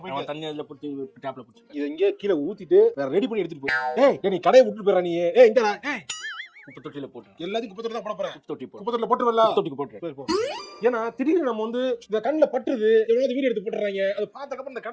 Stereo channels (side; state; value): both; identical; correlation 1.00